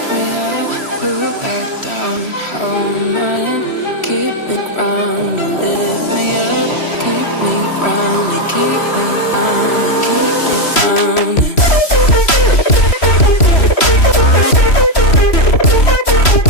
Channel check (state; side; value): late; right; 3.1 ms